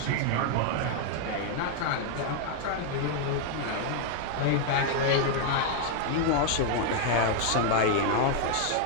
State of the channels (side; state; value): both; different; correlation 0.00